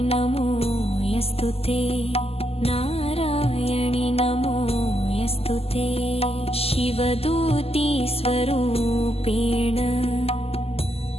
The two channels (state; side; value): late; right; 0.29 ms